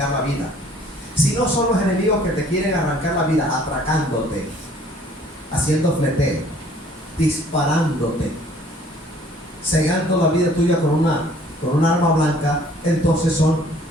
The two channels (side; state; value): both; normal; correlation 0.57